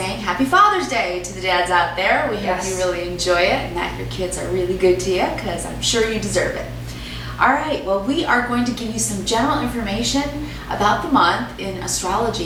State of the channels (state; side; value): identical; both; correlation 1.00